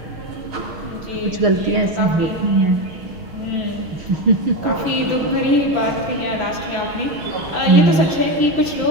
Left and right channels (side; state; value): left; late; 6.0 ms